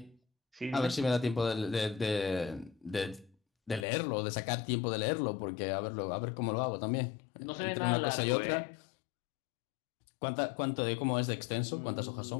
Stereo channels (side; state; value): right; drops out; at 3.9 s